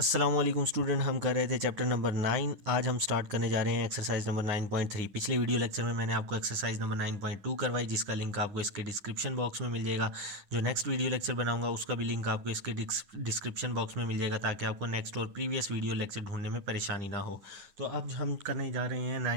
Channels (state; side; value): late; left; 9.9 ms